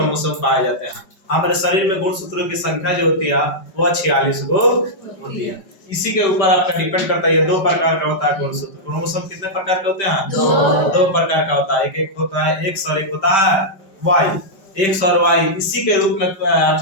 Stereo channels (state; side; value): late; right; 5.1 ms